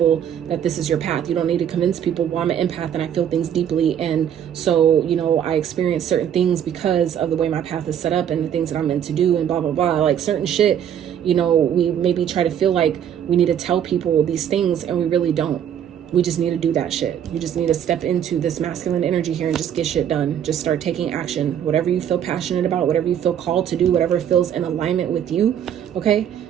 that this is your path. You don't need to convince people, well, I'm an empath and I feel things deeply. And so, you know, I experience certain things because of the way my path is set up and the things that I'm meant to do and blah, blah, blah. Like certain shit, you know, we maybe try to feel like we need to tell people these things, and we really don't. We just need to do that shit. You just need to step into this masculine energy here and just get shit done. Just start taking action. Whatever you feel passionate about, whatever you feel called to do, whatever feels in alignment with you, okay?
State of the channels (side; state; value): left; quieter; 9.4 dB